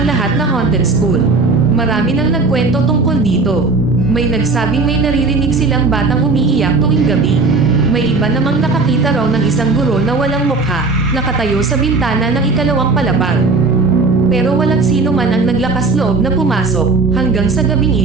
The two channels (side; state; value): left; quieter; 3.8 dB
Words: lahat na haunted school. Marami nang nagkwento tungkol dito. May nagsabing may naririnig silang batang umiiyak tuwing gabi. May iba namang nakakita raw ng isang guro na walang mukha, nakatayo sa bintana ng ikalawang palapag. Pero walang sino man ang naglakas loob na pumasok hanggang sa gabing